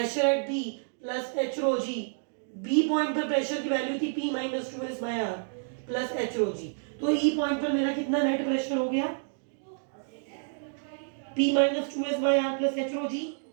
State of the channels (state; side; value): silent; left; digital silence